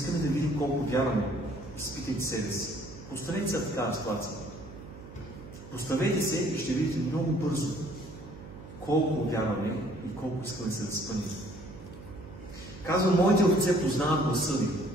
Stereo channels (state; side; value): noise; right; hum, 15 dB below the sound